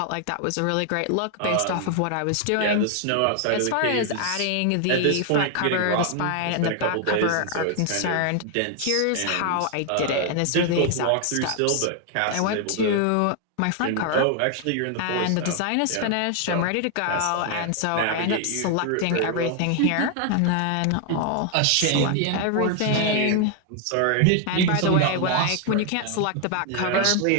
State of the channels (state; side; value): different; both; correlation 0.00